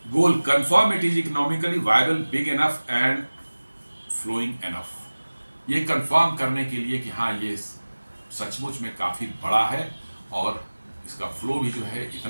Goal, confirm it is economically viable, big enough and flowing enough. ये कंफर्म करने के लिए कि हाँ ये सचमुच में काफ़ी बड़ा है और इसका फ्लो भी जो है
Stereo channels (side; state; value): both; inverted; correlation -1.00